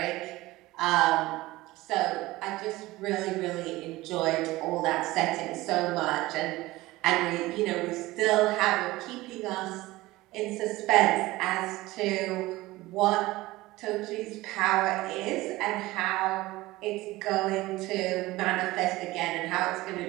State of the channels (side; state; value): left; quieter; 18.8 dB